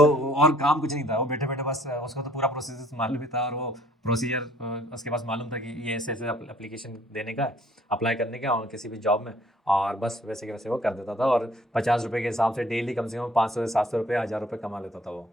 सर। और काम कुछ नहीं था, वो बैठे बैठे बस उसको तो पूरा प्रोसीजर मालूम भी था, और वो प्रोसीजर उसके पास मालूम था कि ये ऐसे ऐसे एप्लीकेशन देने का, अप्लाई करने का और किसी भी जॉब में, और बस वैसे के वैसे वो कर देता था, और 50 रुपये के हिसाब से डेली कम से कम 500 से 700 रुपये, 1000 रुपये कमा लेता था वो।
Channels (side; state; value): both; normal; correlation 0.58